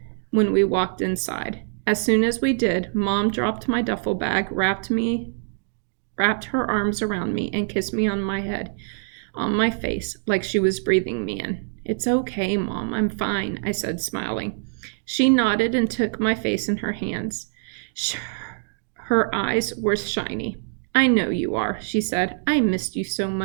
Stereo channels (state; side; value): silent; left; digital silence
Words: when we walked inside. As soon as we did, Mom dropped my duffel bag, wrapped her arms around me, and kissed me on my head, on my face, like she was breathing me in. "It's okay, Mom, I'm fine," I said, smiling. She nodded and took my face in her hands. Her eyes were shiny. "I know you are," she said. "I missed you so